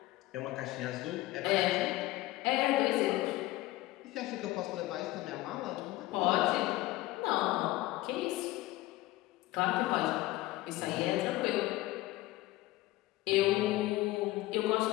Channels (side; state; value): right; quieter; 18.0 dB